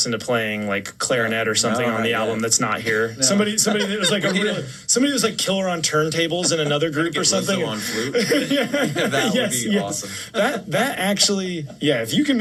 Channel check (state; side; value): identical; both; correlation 1.00